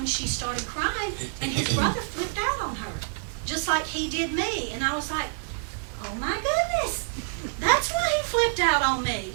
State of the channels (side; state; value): left; silent; digital silence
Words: she started crying and his brother flipped out on her, just like he did me. And I was like, oh my goodness, that's why he flipped out on